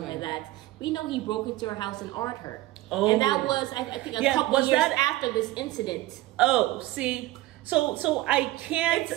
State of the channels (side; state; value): left; quieter; 17.4 dB